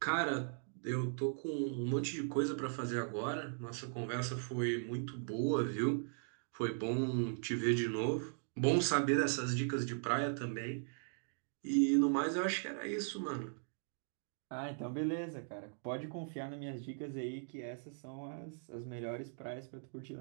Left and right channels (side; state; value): left; silent; digital silence